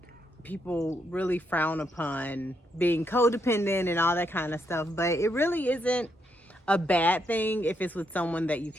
people really frown upon being codependent and all that kind of stuff. But it really isn't a bad thing if it's with someone that you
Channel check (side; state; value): both; normal; correlation 0.78